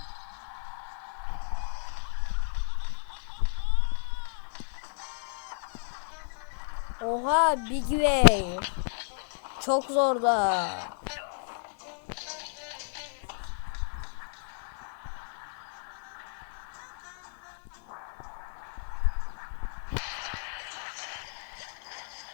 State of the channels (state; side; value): silent; right; digital silence